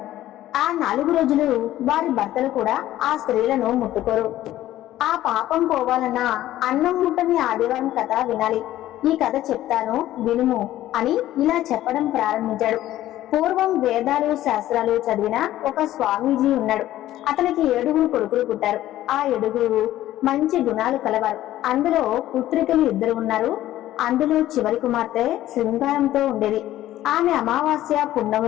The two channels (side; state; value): right; quieter; 14.0 dB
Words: ఆ 4 రోజులు వారి భర్తలు కూడా ఆ స్త్రీలను ముట్టుకోరు. ఆ పాపం పోవాలన్నా అన్నం ముట్టని ఆదివారం కథ వినాలి. ఈ కథ చెప్తాను వినుము అని ఇలా చెప్పడం ప్రారంభించాడు. పూర్వం వేదాలు శాస్త్రాలు చదివిన ఒక స్వామీజీ ఉన్నాడు. అతనికి 7 కొడుకులు పుట్టారు. ఆ 7 మంచి గుణాలు కలవారు. అందులో పుత్రికలు 2 ఉన్నారు. అందులో చివరి కుమార్తె శృంగారంతో ఉండేది. ఆమె అమావాస్య